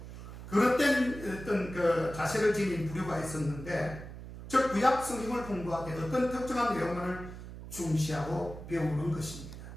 그릇된 어떤 그 자세를 지닌 부류가 있었는데 즉 구약 성경을 공부하되 어떤 특정한 내용만을 중시하고 배우는 것입니다.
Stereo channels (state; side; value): noise; right; hum, 12 dB below the sound